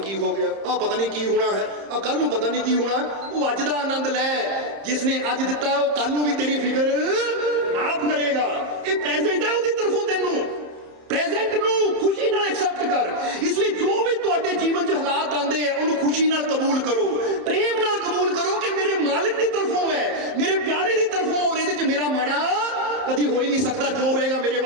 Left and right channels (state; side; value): late; left; 30 ms